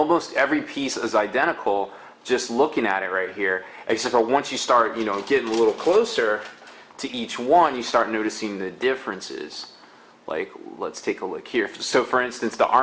every piece is identical. Just looking at it right here, except for once you start getting a little closer to each one, you start noticing the differences. Like, let's take a look here. So for instance, the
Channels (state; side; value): identical; both; correlation 1.00